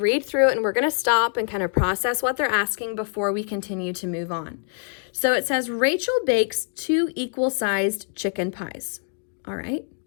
through it and we're going to stop and kind of process what they're asking before we continue to move on. So it says, Rachel bakes 2 equal-sized chicken pies. All right,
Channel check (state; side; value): silent; right; 56 dB below the other